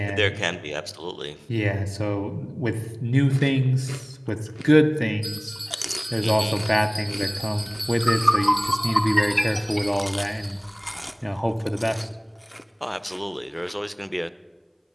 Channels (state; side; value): identical; both; correlation 1.00